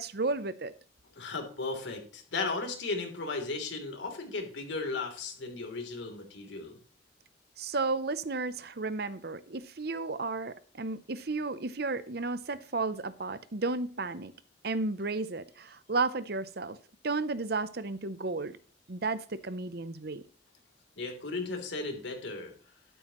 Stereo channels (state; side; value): normal; both; correlation -0.07